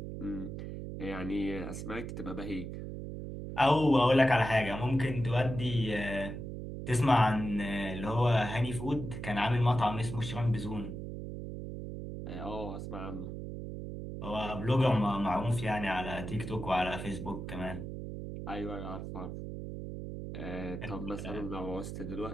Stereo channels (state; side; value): noise; right; hum, 7 dB below the sound